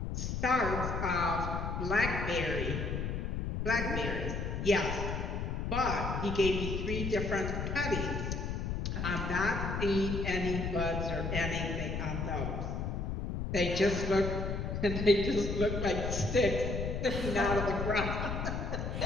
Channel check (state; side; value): noise; left; rumble, 2 dB below the sound